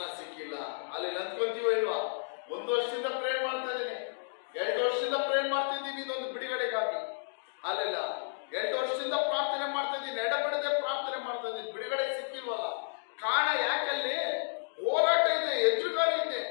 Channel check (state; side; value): silent; right; digital silence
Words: ಸಿಕ್ಕಿಲ್ಲ. ಅಲ್ಲೆಲ್ಲ ಅಂದ್ಕೊಂತೀವೋ ಇಲ್ವಾ? 1 ವರ್ಷದಿಂದ ಪ್ರೇಯರ್ ಮಾಡ್ತಾ ಇದ್ದೀನಿ, 2 ವರ್ಷದಿಂದ ಪ್ರೇಯರ್ ಮಾಡ್ತಾ ಇದ್ದೀನಿ ಇದೊಂದು ಬಿಡುಗಡೆಗಾಗಿ. ಅಲ್ಲೆಲ್ಲ 2 ವರ್ಷದಿಂದ ಪ್ರಾರ್ಥನೆ ಮಾಡ್ತಾ ಇದ್ದೀನಿ, ಎಡಬಿಡದೆ ಪ್ರಾರ್ಥನೆ ಮಾಡ್ತಾ ಇದ್ದೀನಿ, ಬಿಡುಗಡೆ ಸಿಕ್ಕಿಲ್ವಲ್ಲ. ಕಾರಣ ಯಾಕಲ್ಲಿ? ಹೋರಾಟ ಇದೆ, ಎದುರುಗಾಳಿ ಇದೆ.